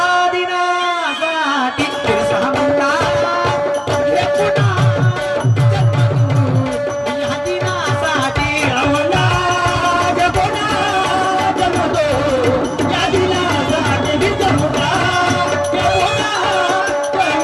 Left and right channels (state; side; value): identical; both; correlation 1.00